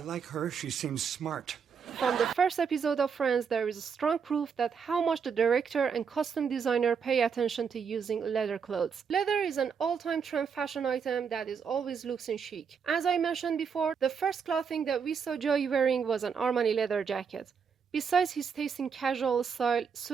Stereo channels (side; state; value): left; quieter; 6.4 dB